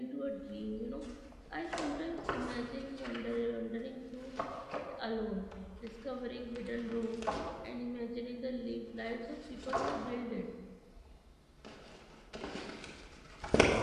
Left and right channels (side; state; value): both; identical; correlation 1.00